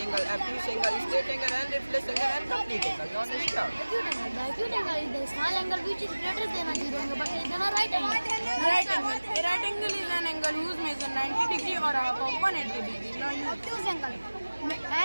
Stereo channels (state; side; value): inverted; both; correlation -1.00